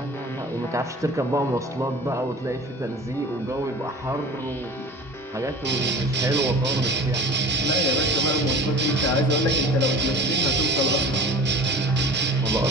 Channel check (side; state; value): both; normal; correlation 0.40